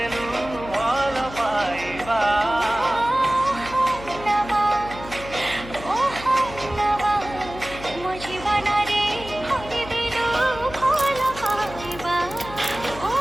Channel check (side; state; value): left; noise; hum, 14 dB below the sound